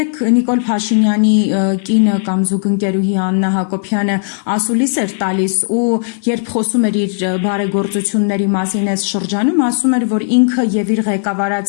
Նիկոլ Փաշինյանի կինը կամ զուգընկերուհի Աննա Հակոբյանը ասուլիս էր տալիս ու երբ խոսում էր իր բարեգործությունների մասին այս շրջանում, ասում էր, որ ինքը եւ իր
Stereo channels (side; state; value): right; silent; digital silence